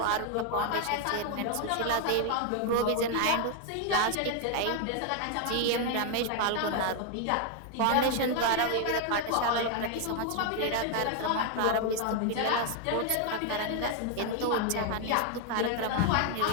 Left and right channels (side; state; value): both; different; correlation 0.01